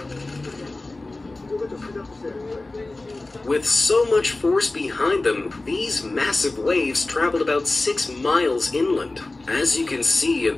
With so much force behind them, these massive waves traveled about 6 miles inland. As you can see in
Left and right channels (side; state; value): right; quieter; 3.1 dB